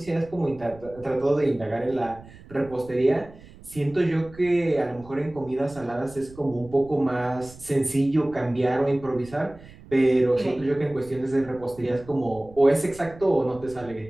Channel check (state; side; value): noise; right; rumble, 20 dB below the sound